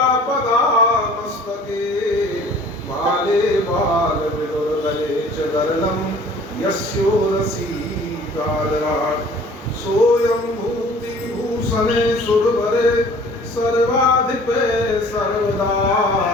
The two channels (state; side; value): normal; both; correlation 0.50